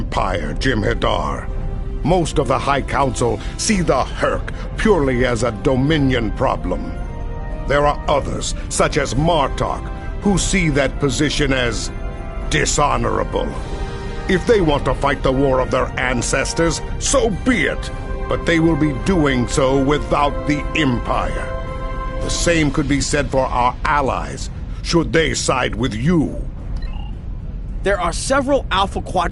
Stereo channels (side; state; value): both; identical; correlation 1.00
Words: Jem'Hadar. Most of the High Council see the Herc purely as a Dominion problem. There are others, such as Martok, who see that position as dishonorable. If they want to fight the war of their ancestors, so be it. but they will be doing so without the Empire. The same could be said for our allies, should they side with you. There are several Alpha